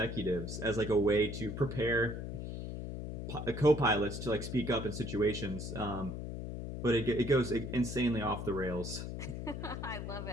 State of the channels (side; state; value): left; noise; hum, 6 dB below the sound